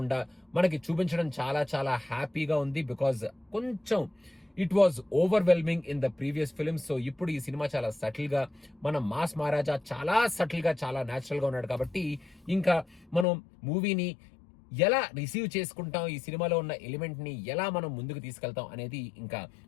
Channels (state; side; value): drops out; right; at 13.2 s